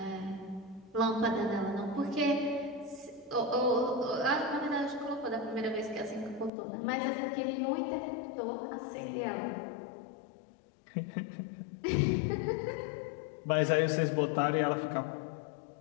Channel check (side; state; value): right; drops out; at 6.5 s